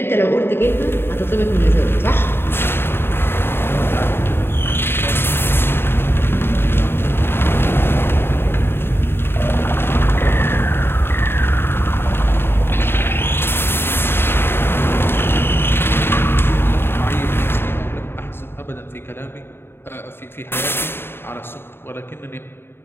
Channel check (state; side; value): late; right; 0.11 ms